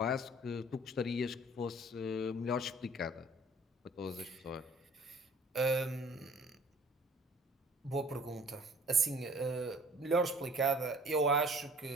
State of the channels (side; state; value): both; normal; correlation 0.51